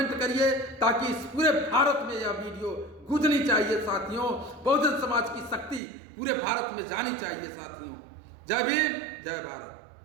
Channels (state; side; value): drops out; left; at 5.8 s